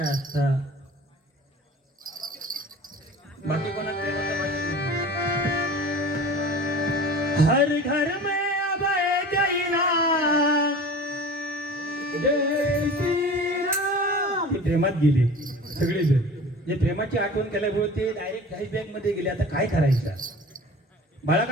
असता. बाकी कोणाच प्रेमाचं माहिती नाही. हर घर में अब एक ही नाम, जय श्रीराम. ते प्रेमात गेले सगळेजण. जे प्रेमाची आठवण केल्यामुळे ते डायरेक्ट फ्लॅशबॅक मध्ये गेले. आता काय करायचं. बाळा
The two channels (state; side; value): normal; both; correlation 0.40